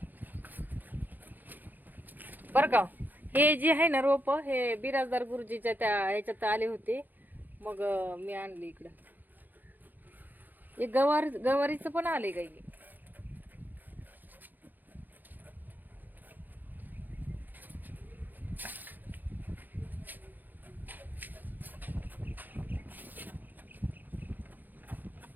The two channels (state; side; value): late; left; 0.086 ms